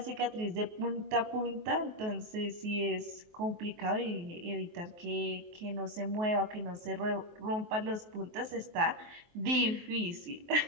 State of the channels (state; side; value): late; left; 23 ms